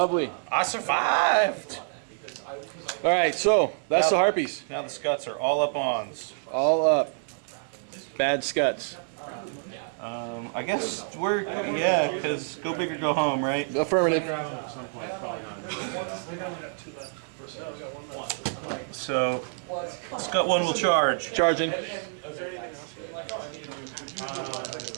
I survived! All right, so that's the Harpies. Now the scuts are all up ons. All up. Bad scuts. I guess we're, yeah, because go big or go home, right? Affirmative. So, Scut 1 will charge. Charging.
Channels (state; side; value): silent; left; digital silence